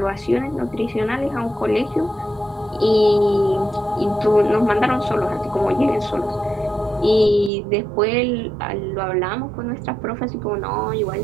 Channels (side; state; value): left; drops out; at 7.5 s